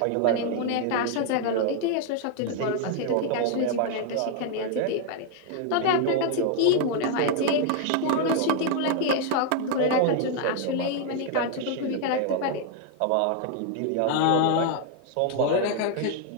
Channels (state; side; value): different; both; correlation 0.00